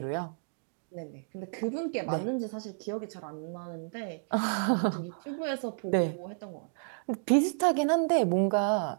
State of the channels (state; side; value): silent; left; digital silence